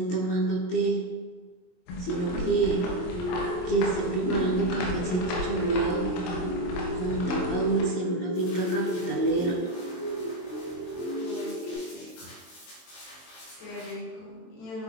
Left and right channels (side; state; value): right; late; 23 ms